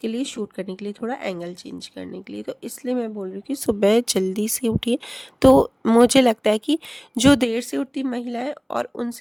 लिए शूट करने के लिए थोड़ा एंगल चेंज करने के लिए। तो इसलिए मैं बोल रही हूँ कि सुबह जल्दी से उठिए। तो मुझे लगता है कि जो देर से उठती महिलाएं और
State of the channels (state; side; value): identical; both; correlation 1.00